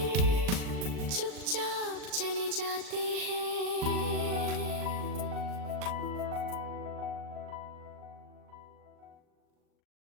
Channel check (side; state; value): left; late; 39 ms